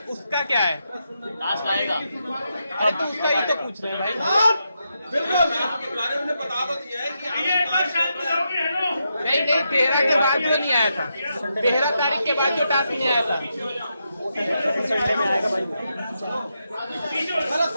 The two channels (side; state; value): both; inverted; correlation -0.84